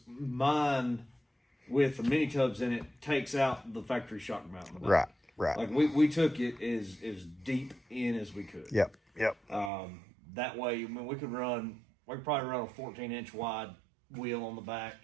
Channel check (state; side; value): drops out; left; at 9.7 s